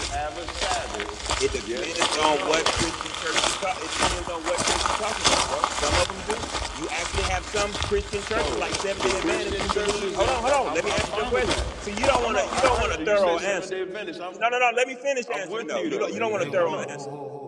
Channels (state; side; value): identical; both; correlation 1.00